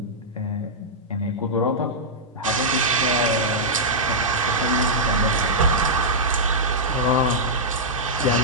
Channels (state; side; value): normal; both; correlation -0.09